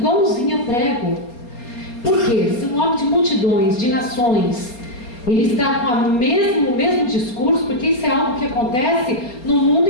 a prego. Por quê? Se um homem de multidões, de nações, ele está com o mesmo discurso, porque isso é algo que acontece no mundo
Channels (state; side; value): late; right; 4.3 ms